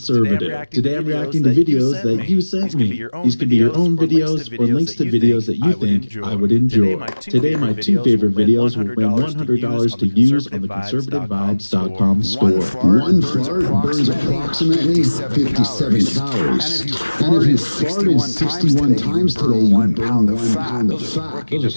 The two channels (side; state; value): both; inverted; correlation -1.00